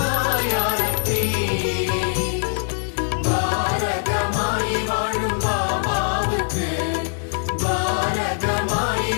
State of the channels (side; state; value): right; silent; digital silence